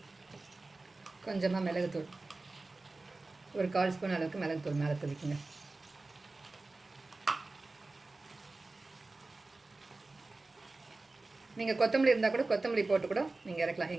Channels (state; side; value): quieter; left; 3.3 dB